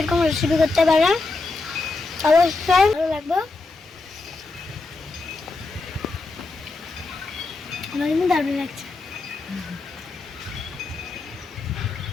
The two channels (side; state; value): right; quieter; 3.6 dB